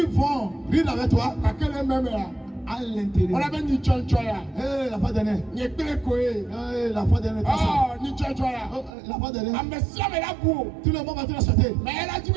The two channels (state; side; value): drops out; left; at 8.9 s